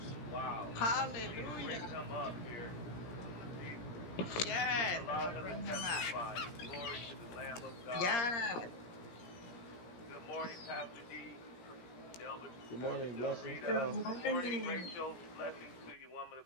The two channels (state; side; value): late; right; 17 ms